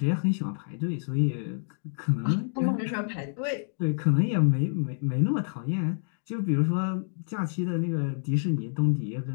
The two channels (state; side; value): silent; right; 59 dB below the other